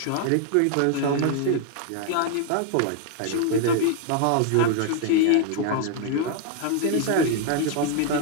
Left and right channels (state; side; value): different; both; correlation 0.00